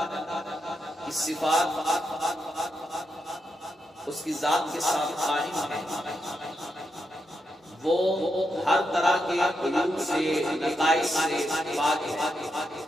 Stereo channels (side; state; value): both; normal; correlation 0.84